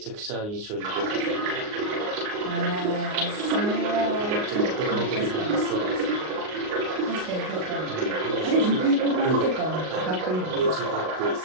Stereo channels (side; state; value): left; late; 38 ms